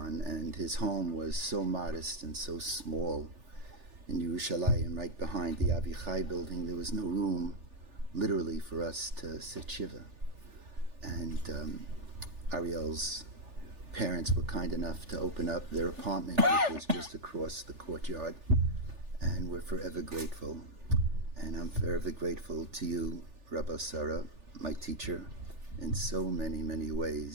and his home was so modest and so small in Yerushalayim, right behind the Avichai building. There was no room, literally, for us to sit shiva. And Ariel's parents were kind enough to open up their apartment, which was just across the courtyard, and we're forever grateful. And I'm forever grateful to you, Rabbi Sarah, my teacher, in so many, many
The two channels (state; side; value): late; left; 3.4 ms